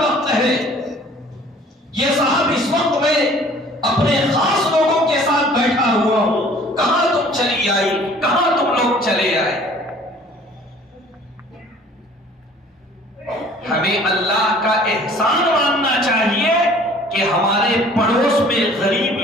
ہے، یہ صاحب اس وقت میں اپنے خاص لوگوں کے ساتھ بیٹھا ہوا ہوں، کہاں تم چلی آئی، کہاں تم لوگ چلے آئے۔ ہمیں اللہ کا احسان ماننا چاہیے کہ ہمارے پڑوس میں غریب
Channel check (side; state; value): both; normal; correlation 0.52